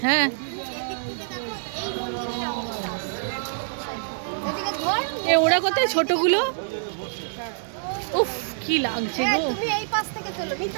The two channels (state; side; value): silent; left; digital silence